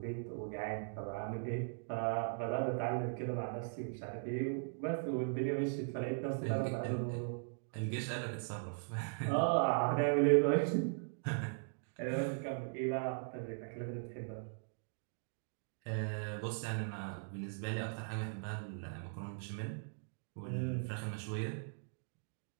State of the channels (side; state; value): left; silent; digital silence